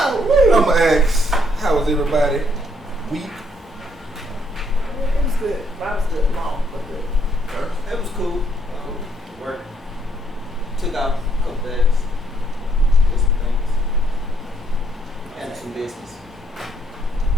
I'm gonna ask, how was everybody? Week? It was good. Mine was good. Long, but good. It was cool. Work. Took out a couple days. Did some things. And some business.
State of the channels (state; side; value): normal; both; correlation 0.71